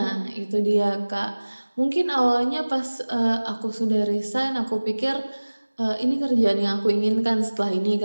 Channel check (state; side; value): inverted; both; correlation -1.00